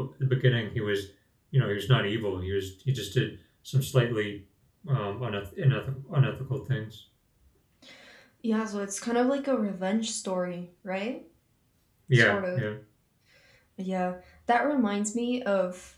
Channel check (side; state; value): both; identical; correlation 1.00